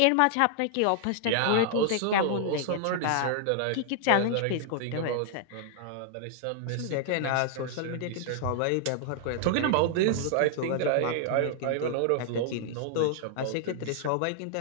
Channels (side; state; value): both; different; correlation -0.01